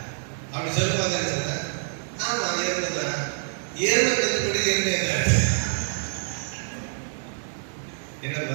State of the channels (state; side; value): silent; left; 61 dB below the other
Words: அப்படி சொல்லுவாங்க. சொல்ல ஆமா எருமைதான். எருமை கற்றுப்படி எருமை